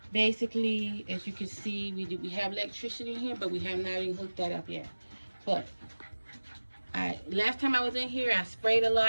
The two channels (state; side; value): inverted; both; correlation -1.00